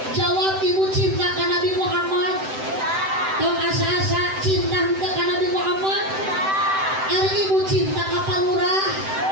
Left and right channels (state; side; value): late; left; 7.8 ms